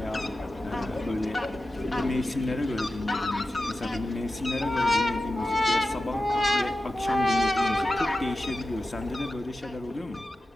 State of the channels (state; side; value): normal; both; correlation 0.93